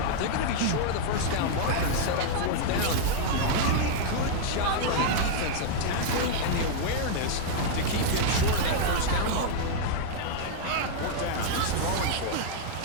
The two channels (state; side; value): different; both; correlation -0.01